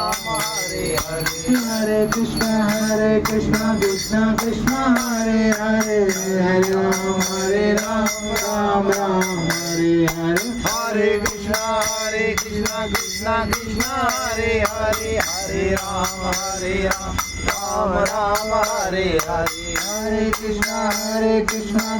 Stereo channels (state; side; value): identical; both; correlation 1.00